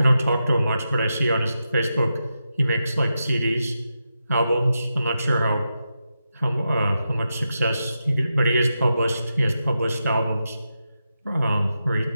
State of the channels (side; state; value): both; inverted; correlation -0.88